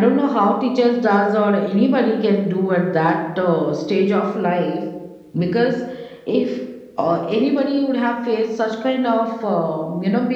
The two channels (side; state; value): both; identical; correlation 1.00